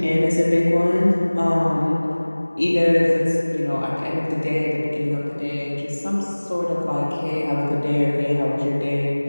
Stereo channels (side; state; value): both; inverted; correlation -1.00